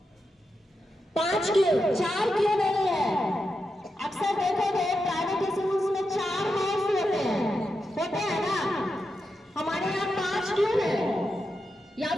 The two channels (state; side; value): normal; both; correlation 0.87